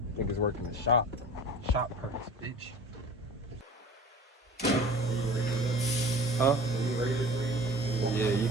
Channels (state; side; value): normal; both; correlation 0.41